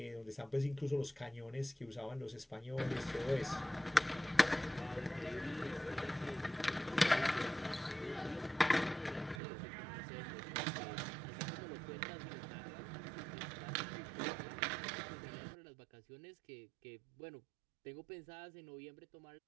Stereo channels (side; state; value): left; drops out; at 9.4 s